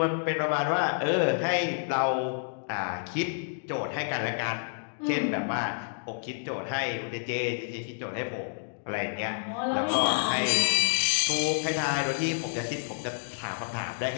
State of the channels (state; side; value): silent; right; digital silence